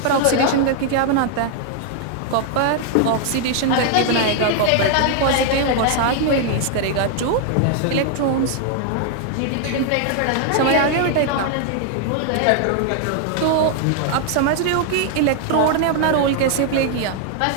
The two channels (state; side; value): different; both; correlation 0.00